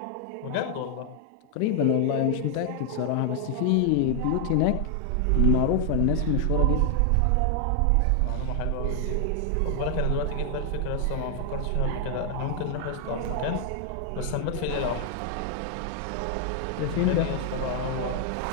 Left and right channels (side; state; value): both; different; correlation 0.00